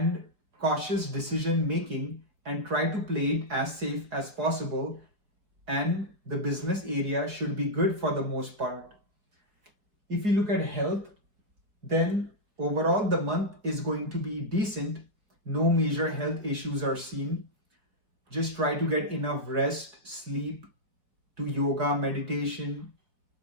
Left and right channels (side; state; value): left; late; 4.6 ms